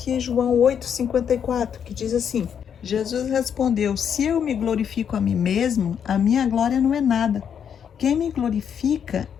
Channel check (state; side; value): quieter; right; 8.0 dB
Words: em João 8,54, que diz assim: Jesus respondeu, se eu me glorifico a mim mesmo, a minha glória não é nada. Quem me glorifica